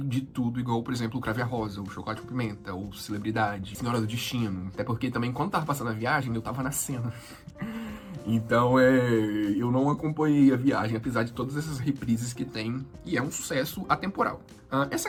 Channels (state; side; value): identical; both; correlation 1.00